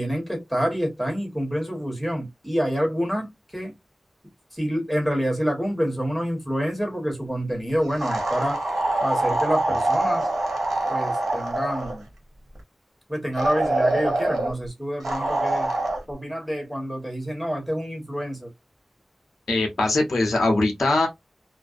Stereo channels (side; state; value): both; normal; correlation 0.94